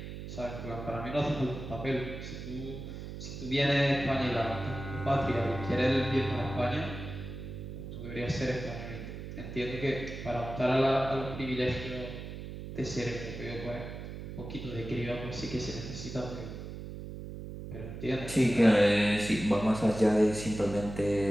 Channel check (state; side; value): noise; right; hum, 9 dB below the sound